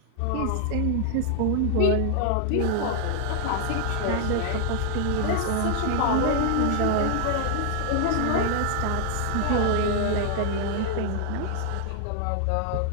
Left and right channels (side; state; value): both; different; correlation 0.00